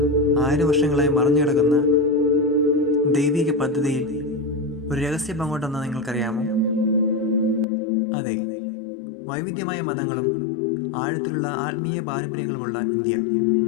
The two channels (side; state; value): right; drops out; at 7.7 s